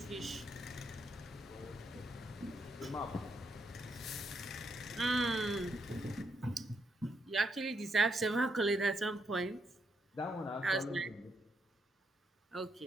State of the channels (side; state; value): both; normal; correlation 0.78